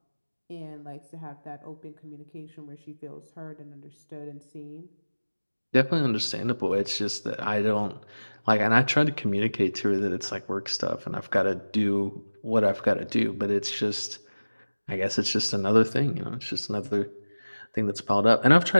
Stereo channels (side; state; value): both; inverted; correlation -1.00